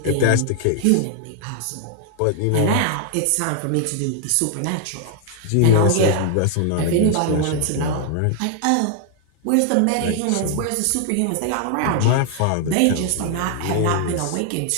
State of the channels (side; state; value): both; different; correlation 0.00